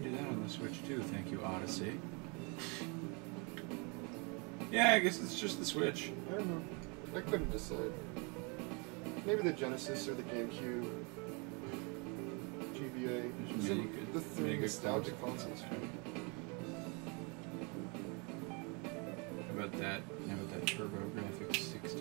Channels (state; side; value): quieter; left; 32.3 dB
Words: do that on the Switch, too. Thank you, Odyssey. Yeah, I guess it's just the Switch. I don't know. I couldn't decide. Maybe the Genesis or the GameCube. GBA. There's These are many good- the three many good nostalgic consoles. consoles. How about that? How about that TurboGrafx